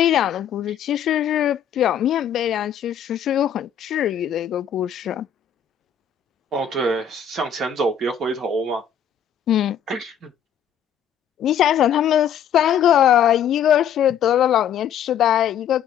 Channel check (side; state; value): right; quieter; 8.4 dB